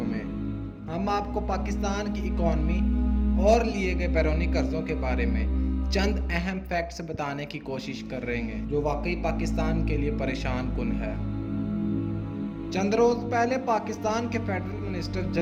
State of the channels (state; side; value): identical; both; correlation 1.00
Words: में हम आपको पाकिस्तान की इकॉनमी और लिए गए बैरूनी कर्ज़ों के बारे में चंद अहम फैक्ट्स बताने की कोशिश कर रहे हैं जो वाकई पाकिस्तान के लिए परेशान कुन है। चंद रोज़ पहले पाकिस्तान के फेडरल मिनिस्टर